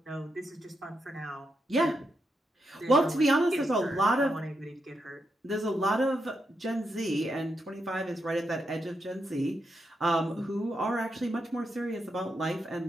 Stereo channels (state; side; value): normal; both; correlation 0.83